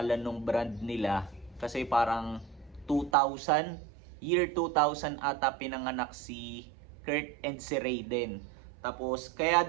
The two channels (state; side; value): drops out; left; at 3.1 s